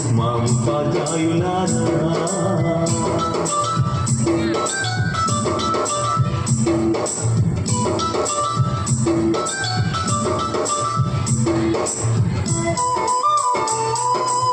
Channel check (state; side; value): identical; both; correlation 1.00